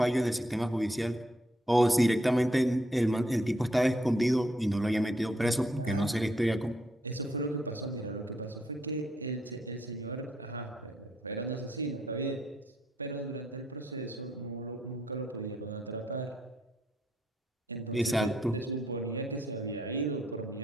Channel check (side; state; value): both; normal; correlation 0.75